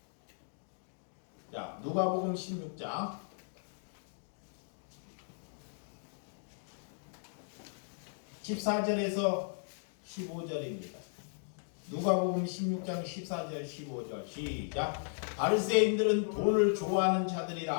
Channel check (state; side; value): silent; right; digital silence